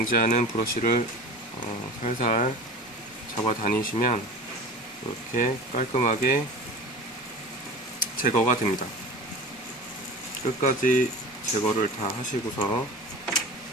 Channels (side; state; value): both; normal; correlation 0.36